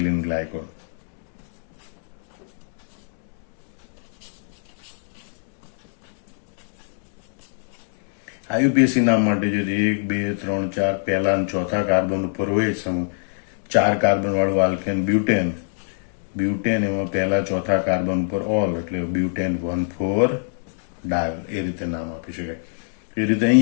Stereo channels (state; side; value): silent; right; digital silence